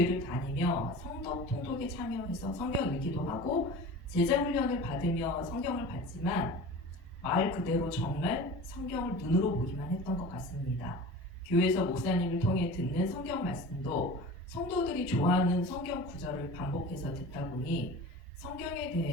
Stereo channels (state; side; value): normal; both; correlation 0.37